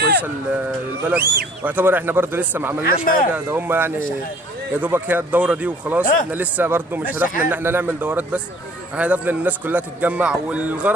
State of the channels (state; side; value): normal; both; correlation 0.55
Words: للبلد، واعتبر احنا برضو لسه ما عملناش حاجه، ده هم يعني يا دوبك هي الدوره دي وخلاص. احنا لسه برضو مش هدفنا ان احنا نعمل دورات بس، احنا هدفنا ان الناس كلها تتجمع،